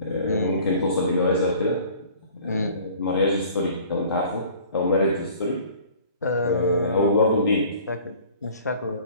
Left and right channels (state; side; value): inverted; both; correlation -0.50